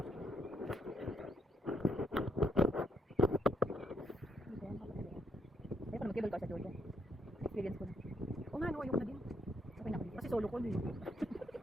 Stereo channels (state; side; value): normal; both; correlation 0.75